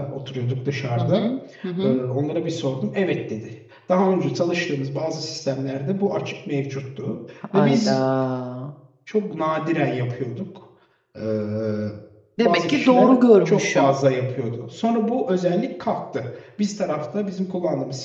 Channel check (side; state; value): both; identical; correlation 1.00